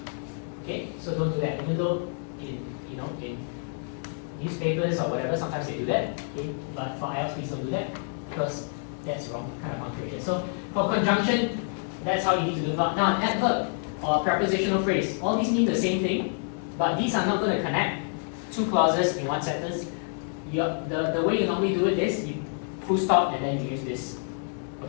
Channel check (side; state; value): right; silent; 56 dB below the other